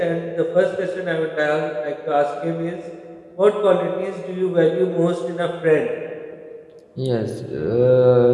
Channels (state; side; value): identical; both; correlation 1.00